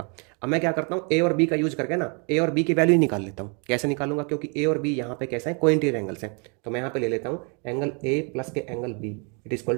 अब मैं क्या करता हूँ, ए और बी का यूज करके ना ए और बी की वैल्यू निकाल लेता हूँ। कैसे निकालूंगा, क्योंकि ए और बी यहाँ पे कैसे हैं, कोइंटीरियर एंगल्स हैं। तो मैं यहाँ पे ले लेता हूँ एंगल ए प्लस के angle B it is equal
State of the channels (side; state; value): left; quieter; 35.5 dB